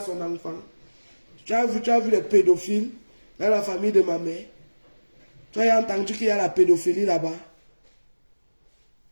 son enfant. Tu as vu les pédophiles dans la famille de ma mère. Tu as entendu qu'il y a la pédophilie là-bas.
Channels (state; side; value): inverted; both; correlation -1.00